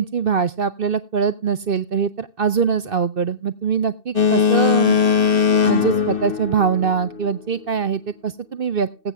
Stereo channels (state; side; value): late; left; 2.6 ms